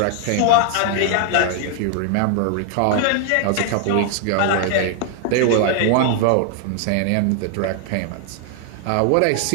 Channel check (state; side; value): different; both; correlation 0.00